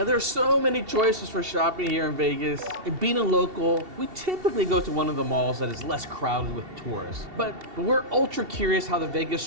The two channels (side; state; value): left; late; 2.7 ms